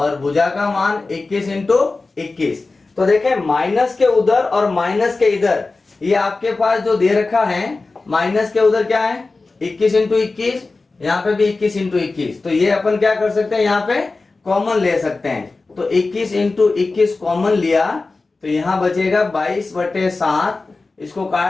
भुजा का मान 21 इंटू 21। तो देखें माइनस के उधर और माइनस के इधर ये आपके पास जो दे रखा है, माइनस के उधर क्या है 21 इंटू 21, यहाँ पे भी 21 इंटू 21। तो ये अपन क्या कर सकते हैं यहाँ पे कॉमन ले सकते हैं। तो 21 इंटू 21 कॉमन लिया तो यहाँ बचेगा 22/7, इसको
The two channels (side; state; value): right; quieter; 3.6 dB